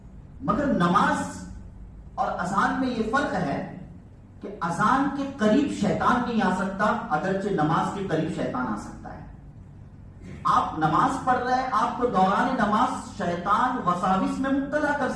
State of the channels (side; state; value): both; identical; correlation 1.00